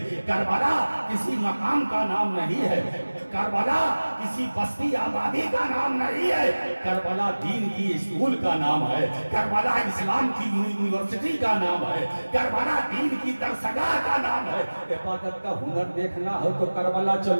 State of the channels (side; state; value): both; inverted; correlation -1.00